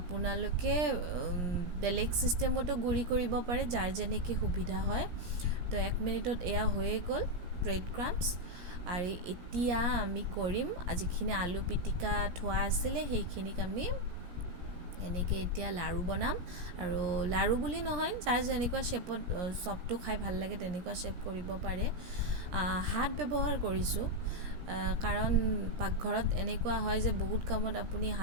বেলেগ ছিষ্টেমতো গুড়ি কৰিব পাৰে, যাৰ যেনেকৈ সুবিধা হয়। তো 1 মিনিটত এয়া হৈয়ে গ'ল ব্ৰেড ক্ৰাম্পছ। আৰু এতিয়া আমি কৰিম, যিখিনি আলু পিটিকা থোৱা আছিলে সেইখিনিক আমি এনেকৈ এতিয়া লাড়ু বনাম। আৰু লাড়ু বুলি নহয়, যাৰ যেনেকুৱা শ্বেপত চপটো খাই ভাল লাগে তেনেকুৱা শ্বেপ কৰিব পাৰে। হাত ব্যৱহাৰ কৰিছোঁ, কাৰণ পাকঘৰত এনেকুৱা হয় যে বহুত কামত আপুনি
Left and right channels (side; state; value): left; late; 17 ms